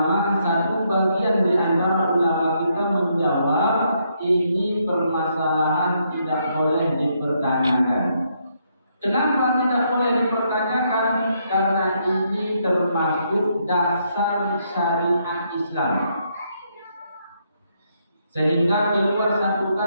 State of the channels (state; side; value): inverted; both; correlation -0.75